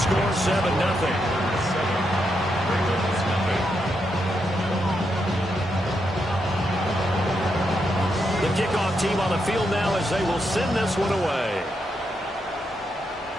7-0. The kickoff team on the field now as they will send this one away.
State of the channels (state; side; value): normal; both; correlation 0.82